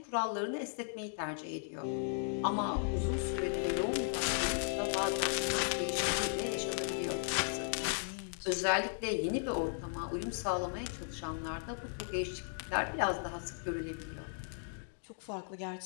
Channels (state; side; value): silent; right; digital silence